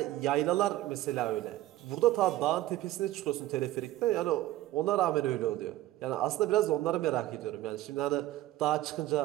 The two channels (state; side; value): quieter; left; 15.5 dB